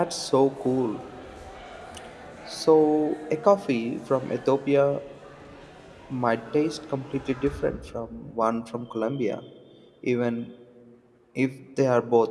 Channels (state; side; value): identical; both; correlation 1.00